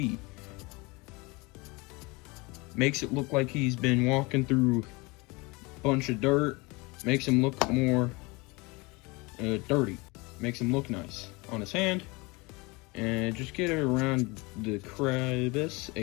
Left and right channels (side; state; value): right; quieter; 25.6 dB